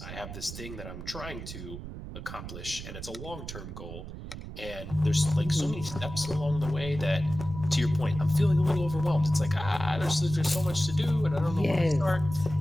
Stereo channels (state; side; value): noise; right; rumble, 10 dB below the sound